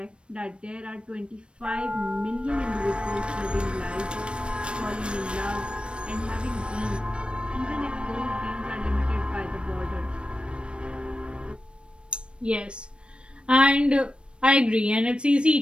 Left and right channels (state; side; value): late; left; 0.057 ms